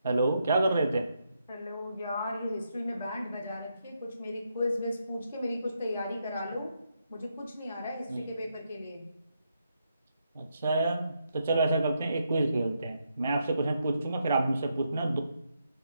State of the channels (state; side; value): inverted; both; correlation -0.80